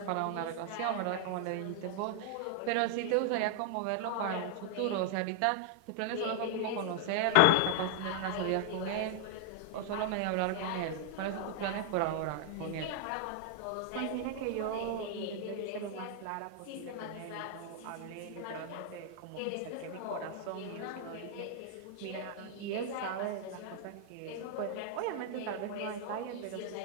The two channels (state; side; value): different; both; correlation 0.00